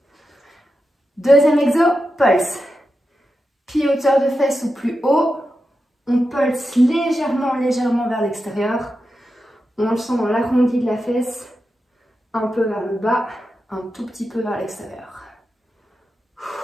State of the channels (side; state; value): both; normal; correlation 0.89